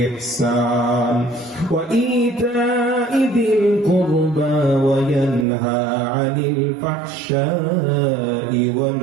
ইহসান ওয়া ইতা'i যিল কুরবা ওয়া ইয়ানহা 'আনিল ফাহশা'i ওয়াল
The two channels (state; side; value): drops out; left; at 5.5 s